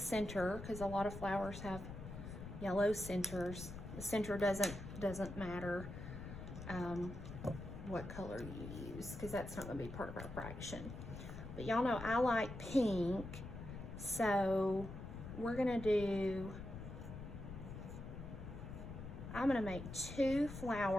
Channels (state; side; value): noise; left; rumble, 9 dB below the sound